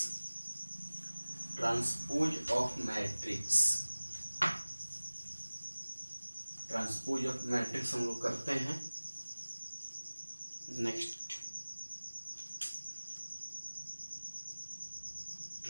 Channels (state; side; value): inverted; both; correlation -1.00